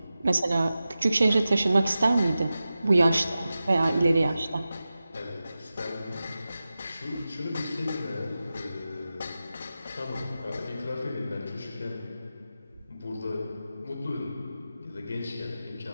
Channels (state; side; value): inverted; both; correlation -0.94